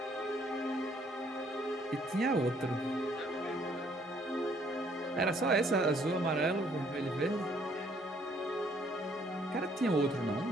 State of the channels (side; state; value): both; normal; correlation 0.64